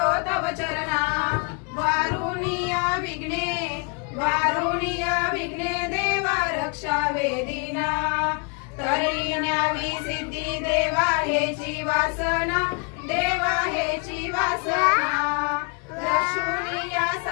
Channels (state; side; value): quieter; right; 35.0 dB